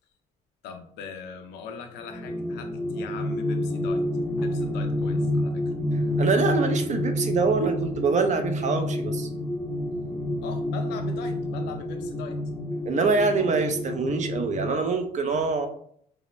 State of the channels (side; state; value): both; normal; correlation 0.55